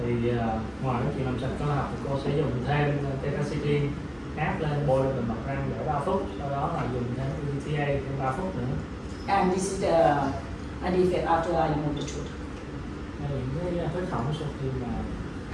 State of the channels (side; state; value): both; identical; correlation 1.00